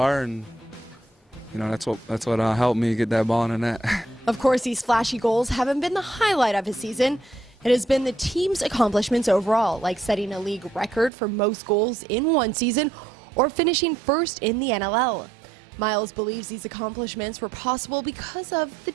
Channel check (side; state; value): left; drops out; at 11.1 s